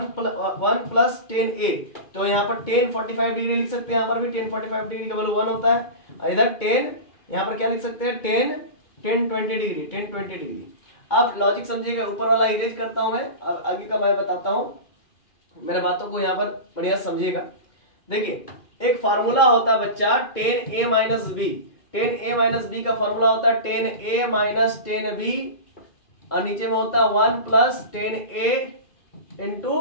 प्लस tan a, तो यहाँ पर tan 45 डिग्री लिख सकते हैं, यहाँ पर भी tan 45 डिग्री का वैल्यू 1 होता है। और इधर tan, यहाँ पर क्या लिख सकते हैं tan 20 डिग्री, tan 20 डिग्री। आप लॉजिक समझिएगा, ऊपर वाला इरेज करता हूं मैं, आगे का मैं बताता हूं, मेरे बातों को यहाँ पर बढ़िया समझिएगा। देखिए एक फार्मूला होता है बच्चा tan a minus b, tan a minus b का फार्मूला होता है tan a minus tan b और नीचे में होता है 1 plus tan a into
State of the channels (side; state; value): right; late; 2.4 ms